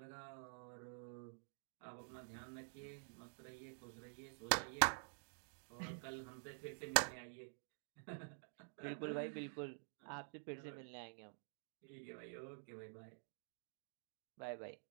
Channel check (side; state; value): left; silent; digital silence